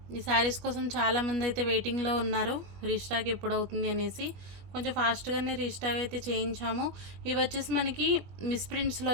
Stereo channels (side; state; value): left; late; 21 ms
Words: ఈ శారీస్ కోసం చాలామంది అయితే వెయిటింగ్లో ఉన్నారు, రీస్టాక్ ఎప్పుడు అవుతుంది అనేసి. కొంచెం ఫాస్ట్గానే రీస్టాక్ అయితే చేయించాము. ఇవి వచ్చేసి మనకి మిస్ప్రింట్స్లో